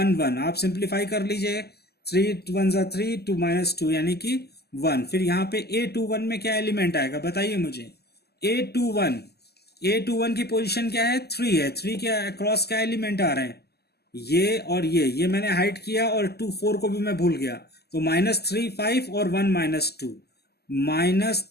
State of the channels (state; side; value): late; right; 0.46 ms